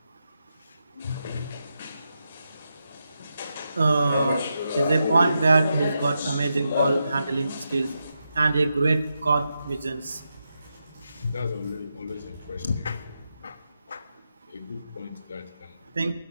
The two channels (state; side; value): inverted; both; correlation -0.86